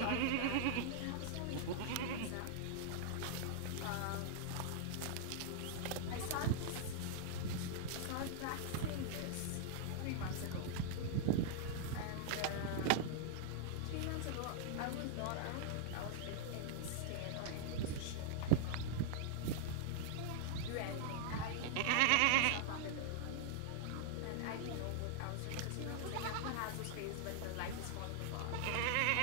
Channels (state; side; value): different; both; correlation -0.01